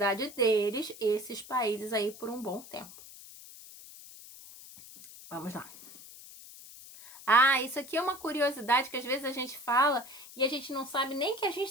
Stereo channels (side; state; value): left; noise; hiss, 17 dB below the sound